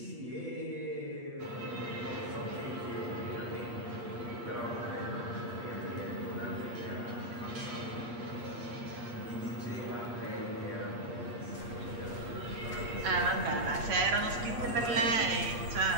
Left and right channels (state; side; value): late; left; 8.4 ms